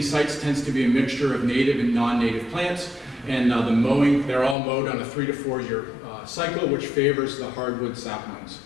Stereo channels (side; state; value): right; drops out; at 4.5 s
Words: sites tends to be a mixture of native and non-native plants, and the mowing, they're all mowed on a 3 to 4 year cycle, which favors the hardwood saplings.